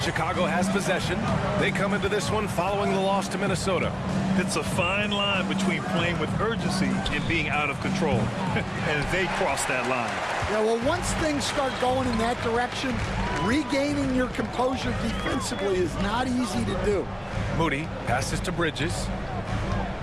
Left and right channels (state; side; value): identical; both; correlation 1.00